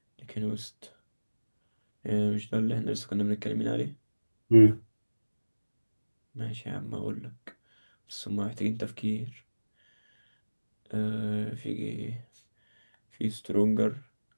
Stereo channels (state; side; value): inverted; both; correlation -1.00